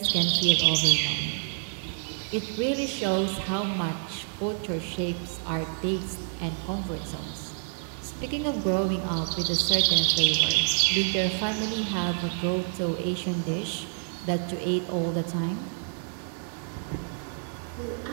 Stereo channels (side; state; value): left; silent; 59 dB below the other